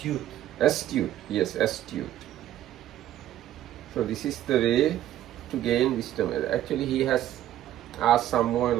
Astute, yes, astute. So this is the way to gain wisdom. Actually, he has asked some more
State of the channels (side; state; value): left; quieter; 12.7 dB